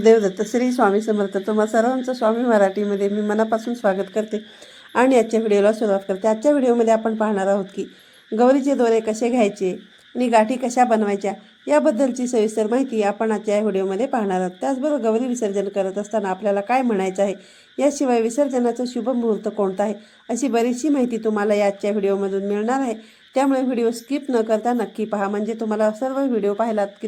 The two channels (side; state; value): both; identical; correlation 1.00